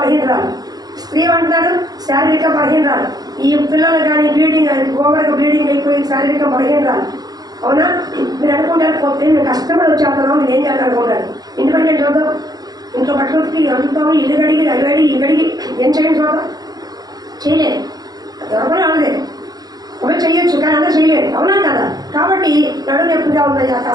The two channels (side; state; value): left; late; 0.19 ms